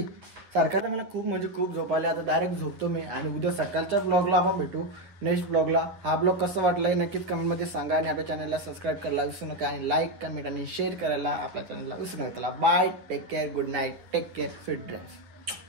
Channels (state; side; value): late; left; 9.8 ms